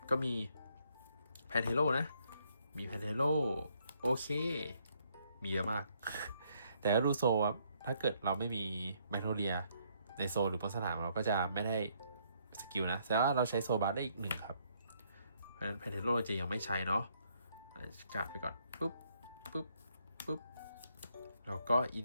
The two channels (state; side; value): inverted; both; correlation -0.70